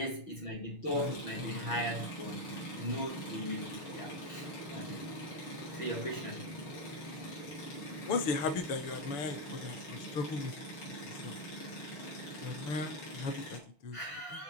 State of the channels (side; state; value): right; late; 6.3 ms